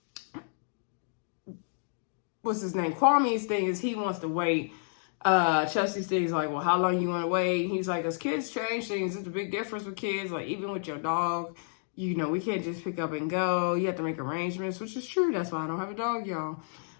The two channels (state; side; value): silent; right; digital silence